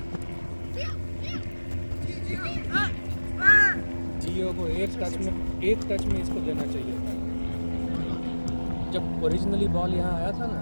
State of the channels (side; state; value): both; inverted; correlation -1.00